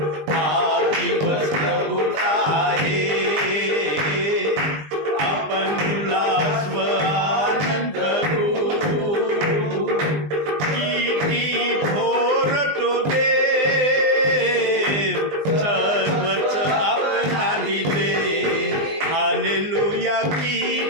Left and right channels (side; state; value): left; late; 20 ms